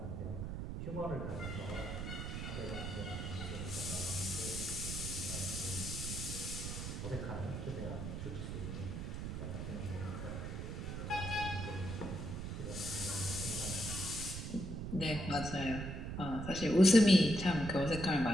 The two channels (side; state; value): right; noise; rumble, 5 dB below the sound